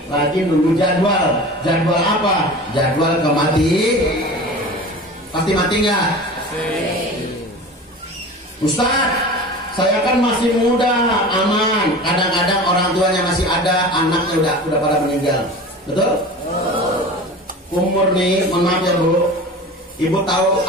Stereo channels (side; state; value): both; normal; correlation 0.36